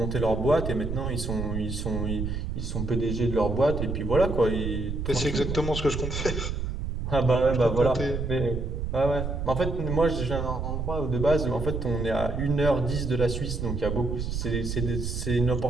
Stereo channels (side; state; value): right; noise; rumble, 3 dB below the sound